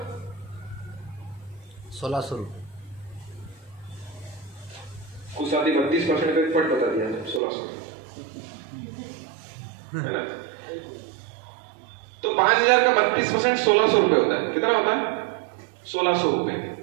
1,600 रुपये। कुछ आदमी 32% का पट बता दिया, 1,600 है ना। तो 5,000 का 32% 1,600 रुपए होता है। कितना होता है? 1,600 रुपए।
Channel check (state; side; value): drops out; left; at 7.4 s